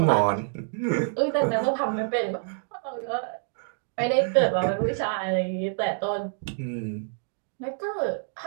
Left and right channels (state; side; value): silent; left; digital silence